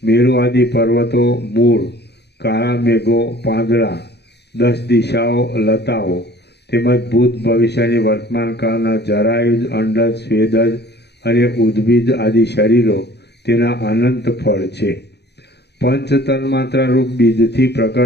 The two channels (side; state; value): right; late; 0.49 ms